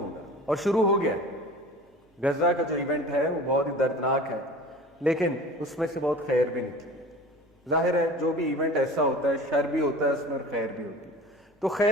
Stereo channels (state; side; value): normal; both; correlation 0.40